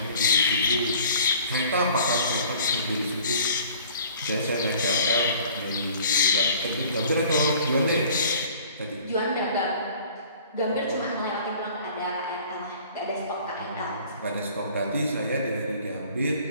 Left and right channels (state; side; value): inverted; both; correlation -0.50